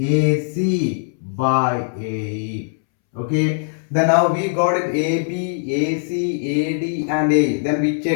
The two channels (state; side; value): silent; right; 66 dB below the other